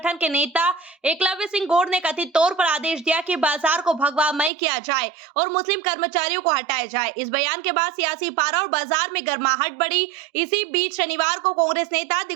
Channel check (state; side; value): drops out; left; at 4.5 s